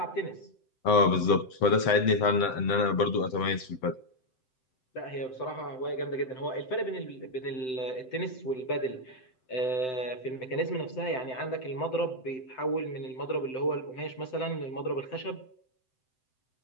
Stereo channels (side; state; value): right; late; 7.8 ms